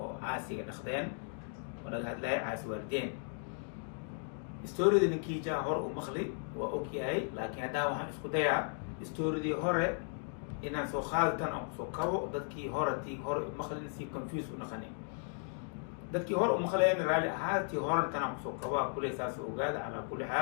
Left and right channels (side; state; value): right; silent; 54 dB below the other